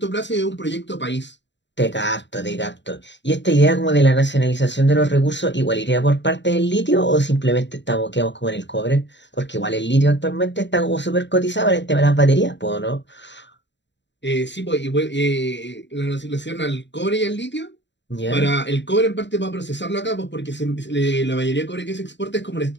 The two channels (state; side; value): late; right; 0.52 ms